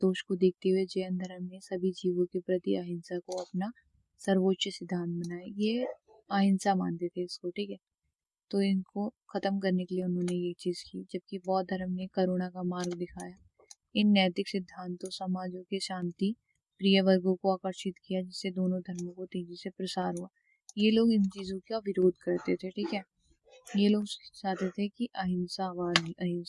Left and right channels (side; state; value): both; identical; correlation 1.00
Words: को देखते हुए जैन धर्म ने सभी जीवों के प्रति अहिंसा को अपना सर्वोच्च सिद्धांत बनाया। ये अहिंसा मानते थे इसको, ठीक है, तो इनको खत्म करने के लिए उन्होंने ये चीज की। जबकि बौद्ध धर्म ने करुणा का मार्ग दिखाया। इन नैतिक सिद्धांतों समाजों के शांति प्रिय वर्गों को आकर्षित किया, जिससे दोनों धर्मों को तेजी से प्रसार हुआ। ये लोग इन चीजों का विरोध करते थे, ठीक है, ये लोग चाहते थे कि अहिंसा